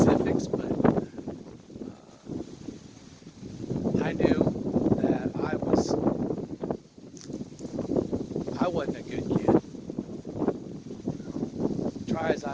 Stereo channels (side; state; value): both; identical; correlation 1.00